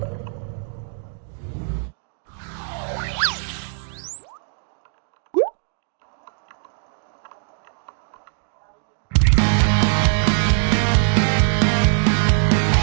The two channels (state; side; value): silent; left; 60 dB below the other